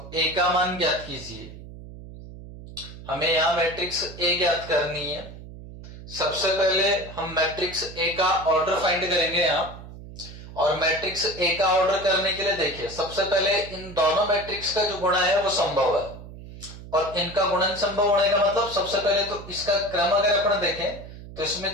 a का मान ज्ञात कीजिए। हमें यहां मैट्रिक्स ए ज्ञात करनी है। सबसे पहले हम मैट्रिक्स ए का ऑर्डर फाइंड करेंगे यहां, और मैट्रिक्स ए का ऑर्डर करने के लिए देखिए, सबसे पहले इन दोनों मैट्रिक्स का जो गुणा है वो संभव है, और इनका गुणन संभव होने का मतलब सबसे पहले तो इसका क्रम अगर अपन देखें तो इसमें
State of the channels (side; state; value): right; noise; hum, 15 dB below the sound